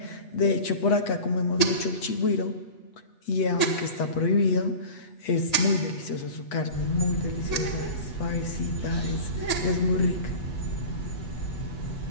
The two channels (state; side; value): late; right; 8.2 ms